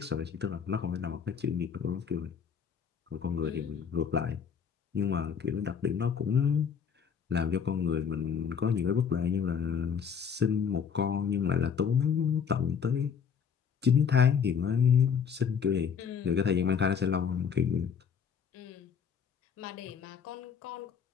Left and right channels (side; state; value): right; quieter; 7.0 dB